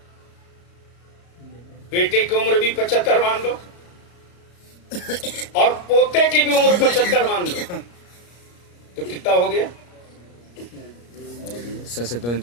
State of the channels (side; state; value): right; late; 34 ms